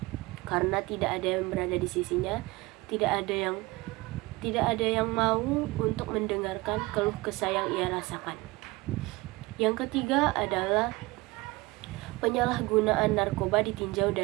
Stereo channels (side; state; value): left; quieter; 22.1 dB